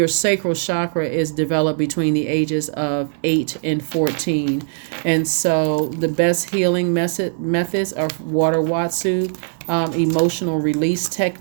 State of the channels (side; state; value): left; silent; digital silence